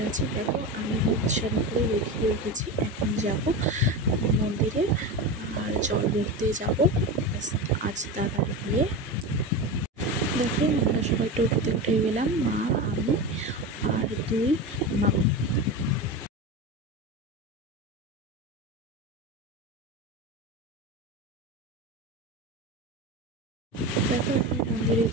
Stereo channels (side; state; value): both; normal; correlation 0.22